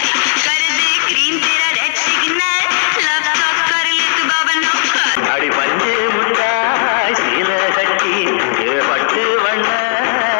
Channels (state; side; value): silent; right; digital silence